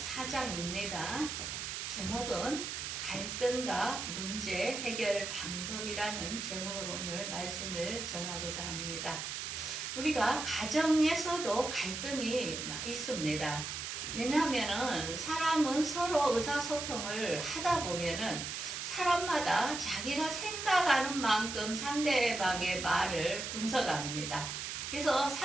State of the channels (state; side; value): noise; right; hiss, 5 dB below the sound